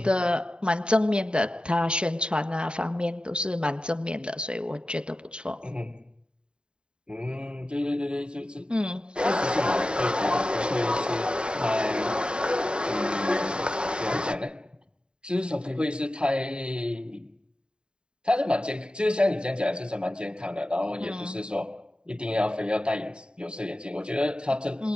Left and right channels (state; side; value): late; left; 0.051 ms